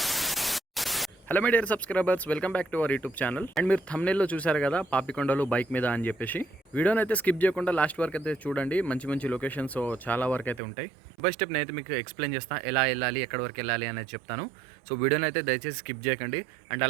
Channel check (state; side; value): drops out; left; at 10.6 s